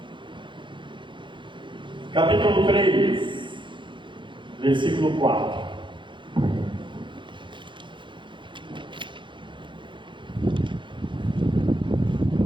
capítulo 3, versículo 4.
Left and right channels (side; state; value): left; late; 0.23 ms